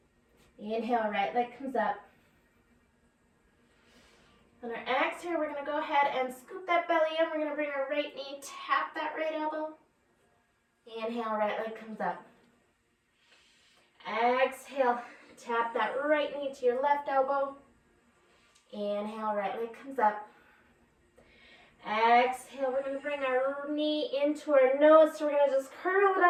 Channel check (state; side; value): identical; both; correlation 1.00